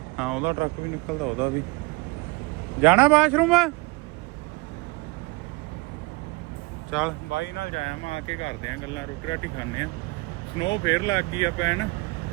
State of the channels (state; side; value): quieter; left; 25.2 dB